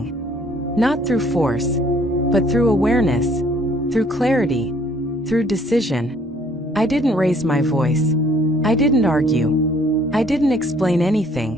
Not through force, but through awareness, through clarity, through decision. I didn't raise my voice. I didn't argue. I didn't explain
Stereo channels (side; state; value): both; normal; correlation 0.61